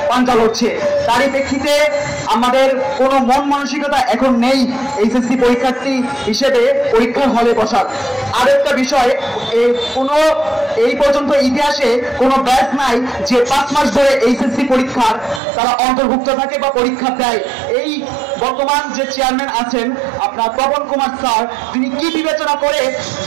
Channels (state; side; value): drops out; left; at 15.4 s